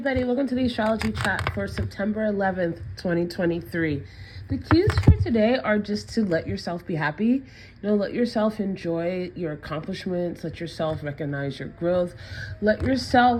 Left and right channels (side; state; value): both; identical; correlation 1.00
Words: welcome to the Astrology Chat for September 11th, 2023. The cues for today are just to let yourself be happy. Let yourself enjoy your accomplishments, let yourself recognize your growth, let